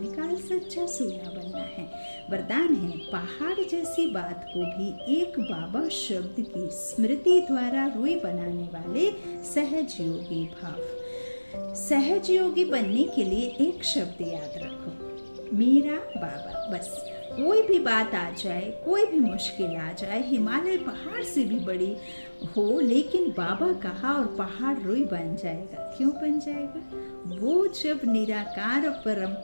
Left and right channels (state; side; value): inverted; both; correlation -1.00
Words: सच्चा सोना बनना है। वरदान है, पहाड़ जैसी बात को भी एक बाबा शब्द की स्मृति द्वारा रुई बनाने वाले सहज योगी भाव। सहज योगी बनने के लिए एक शब्द याद रखो, मेरा बाबा। बस कोई भी बात आ जाए, कोई भी मुश्किल आ जाए, हिमालय पहाड़ से भी बड़ी हो, लेकिन बाबा कहा और पहाड़ रुई बन जाएगा। क्यों बन जाएगा? वो जब निराकार परम